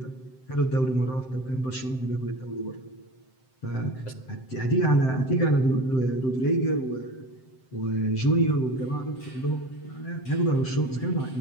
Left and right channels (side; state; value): right; late; 7.7 ms